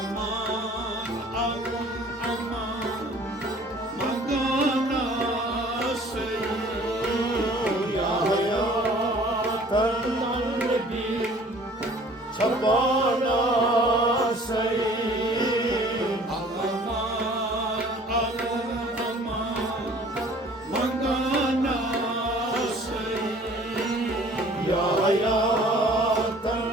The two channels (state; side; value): normal; both; correlation 0.51